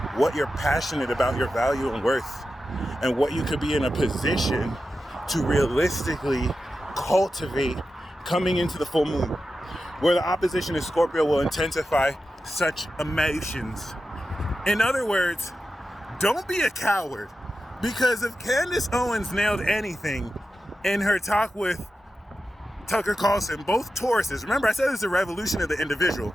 what you're passionate about, your value and worth, and what you could be in a position to realistically cultivate coming into the full moon, where the opposition in Scorpio will intensify such emotions. In other words, don't be a coward, because if Candace Owens nailed anything in her talk with Tucker Carlson, both Tauruses, remember I said it's a revolution of the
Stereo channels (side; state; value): both; normal; correlation 0.91